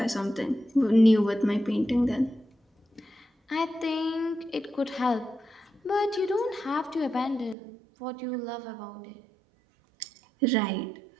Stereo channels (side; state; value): left; drops out; at 7.6 s